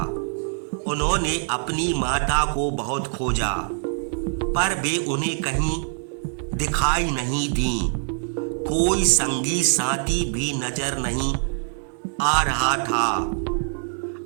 उन्होंने अपनी माता को बहुत खोजा, पर वे उन्हें कहीं दिखाई नहीं दी। कोई संगी साथी भी नजर नहीं आ रहा था।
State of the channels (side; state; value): left; silent; 59 dB below the other